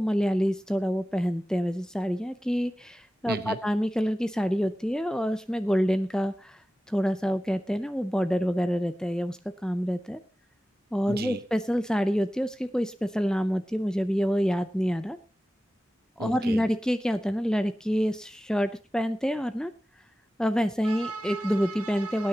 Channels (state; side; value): normal; both; correlation 0.96